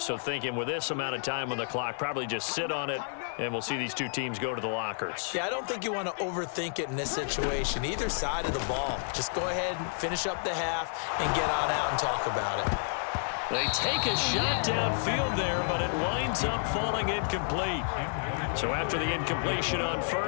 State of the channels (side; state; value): right; silent; digital silence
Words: thinking with this amount of time on the clock, probably just sit on it, and we'll see these two teams go to the lockers. Yeah, I don't think you want to overthink it in this situation. Either side of the ball. Just go ahead and finish up the half and get on out and talk about it. They take a shot downfield there, but it winds up falling incomplete. So after the incompletion on